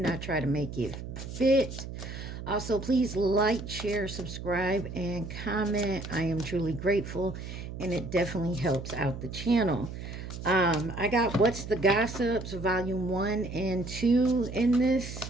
try to make it fit. Also, please like, share, subscribe, and comment. I am truly grateful, and it definitely helps out the channel. I got What's the Gossips, Volume 1 and 2 in this.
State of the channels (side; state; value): right; noise; hum, 9 dB below the sound